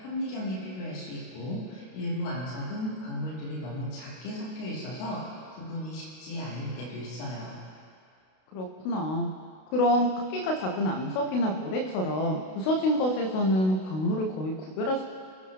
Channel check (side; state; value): right; late; 32 ms